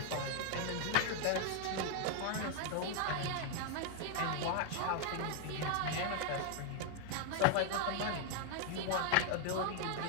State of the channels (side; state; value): both; different; correlation 0.00